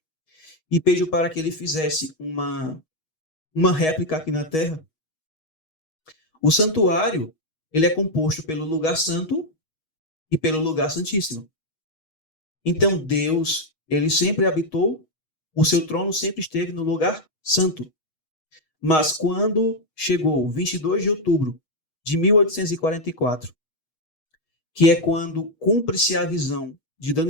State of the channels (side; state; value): right; late; 6.3 ms